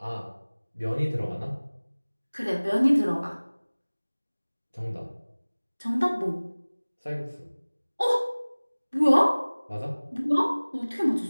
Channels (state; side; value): inverted; both; correlation -1.00